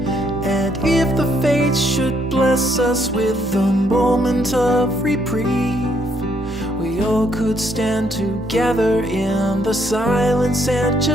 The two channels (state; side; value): normal; both; correlation 0.71